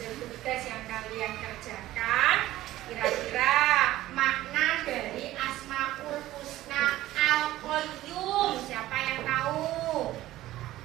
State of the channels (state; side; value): quieter; left; 15.4 dB